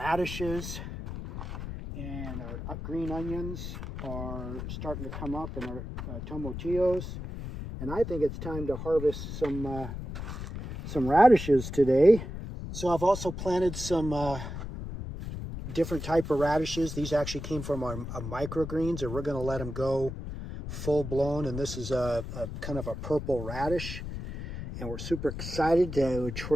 and our green onions are starting to come up, and our tomatillos. And I think it's time to harvest some radishes today. So I've also planted some different type of radishes. These actually came from our microgreens, and we're going to let them go full blown. And this is a kind of a purple radish, and we're super excited to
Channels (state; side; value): noise; left; rumble, 7 dB below the sound